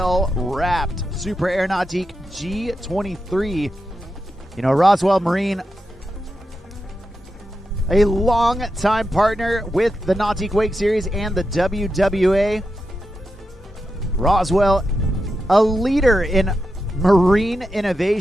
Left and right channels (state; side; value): normal; both; correlation 0.88